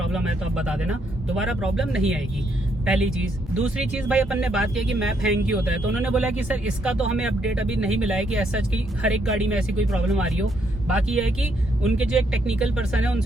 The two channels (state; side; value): normal; both; correlation 0.74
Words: है तो आप बता देना, दोबारा प्रॉब्लम नहीं आएगी। पहली चीज। दूसरी चीज भाई अपन ने बात की कि मैप हैंग की होता है, तो उन्होंने बोला कि सर इसका तो हमें अपडेट अभी नहीं मिला है कि ऐसा कि हर एक गाड़ी में ऐसी कोई प्रॉब्लम आ रही हो। बाकी यह है कि उनके जो एक टेक्निकल पर्सन है